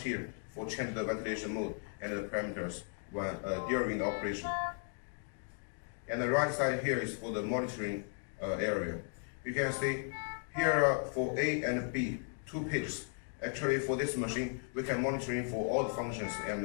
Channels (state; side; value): silent; right; 54 dB below the other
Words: here for change the ventilation mode and the parameters when, during the operation. And the right side here is for the monitoring area. You can see here for A and B, 2 pages. Actually for this machine, we can monitoring for all the functions